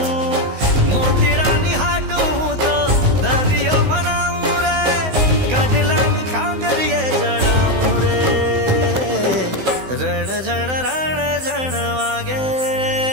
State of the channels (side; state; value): left; late; 16 ms